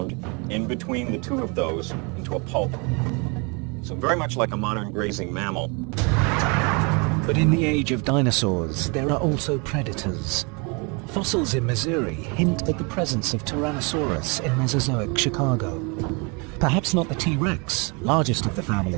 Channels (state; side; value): quieter; left; 31.7 dB